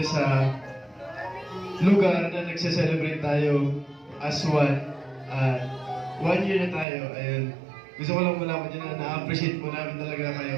sa lugar na nagse-celebrate tayo as one. 1 year na tayo. Ayun. Gusto ko lang malaman nyo na na-appreciate po namin talaga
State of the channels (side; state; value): left; drops out; at 6.9 s